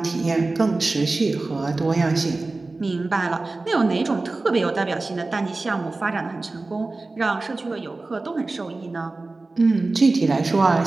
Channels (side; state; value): left; quieter; 3.3 dB